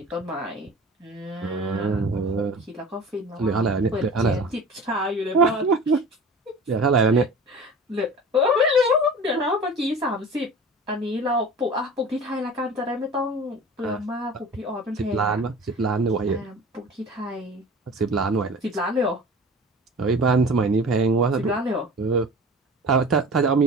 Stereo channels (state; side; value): normal; both; correlation 0.39